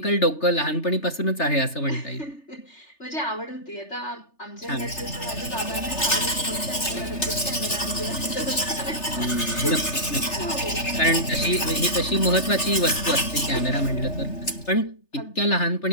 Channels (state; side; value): late; right; 3.3 ms